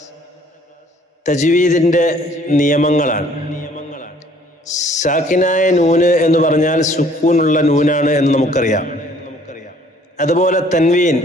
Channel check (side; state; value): both; normal; correlation 0.58